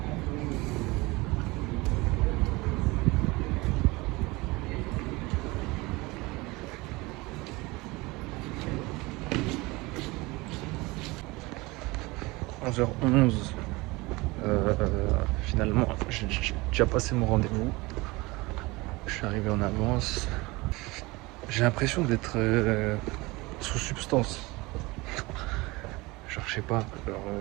11h11. Finalement, j'ai déjà passé mon rendez-vous. Je suis arrivé en avance. J'ai l'impression d'être sous substance. Genre, je sais pas.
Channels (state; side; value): quieter; left; 22.9 dB